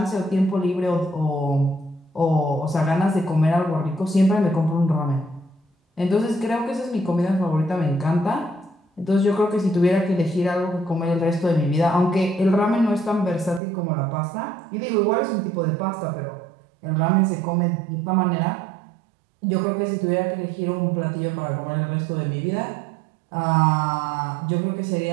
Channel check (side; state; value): left; drops out; at 13.6 s